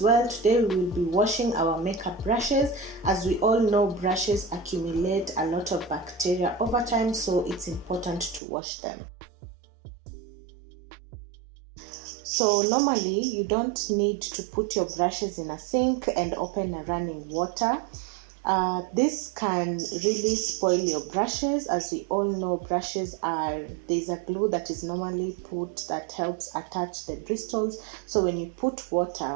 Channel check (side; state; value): left; drops out; at 8.4 s